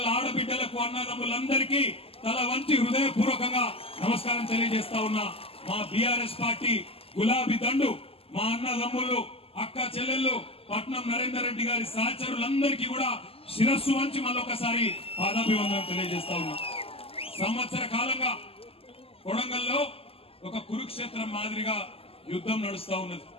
ఆడబిడ్డలకు అన్నదమ్ములందరికీ తల వంచి హృదయపూర్వకంగా నమస్కారం తెలియజేస్తా ఉన్నా. మా బీఆర్ఎస్ పార్టీ గులాబీ దండు మా అన్నదమ్ములు అక్క చెల్లెళ్ళు పట్నం నరేందర్ రెడ్డి గారి సహచరులందరికీ కూడా శిరస్సు వంచి మళ్ళొకసారి పాదాభివందనం తెలియజేస్తా ఉన్నా. సంవత్సర కాలంగా కొడంగల్లో ఒక కురుక్షేత్రం మాదిరిగా యుద్ధం నడుస్తా ఉన్నది.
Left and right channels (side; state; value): right; late; 0.28 ms